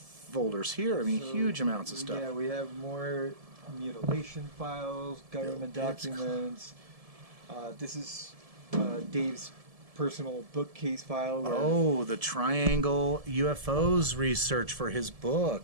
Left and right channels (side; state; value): left; late; 1.7 ms